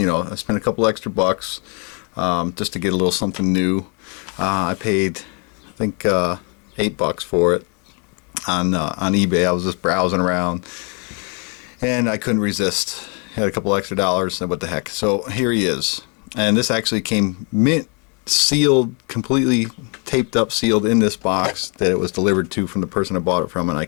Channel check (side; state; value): right; quieter; 36.2 dB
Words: spent a couple extra bucks just to get a little something new. I paid, I think, $8 for it on eBay. I was just browsing around, and I couldn't resist. Had a couple extra dollars, and what the heck. So here he is. And this actually came mint sealed, completely taped up, sealed in this box that it was delivered to from the person I bought it from. And I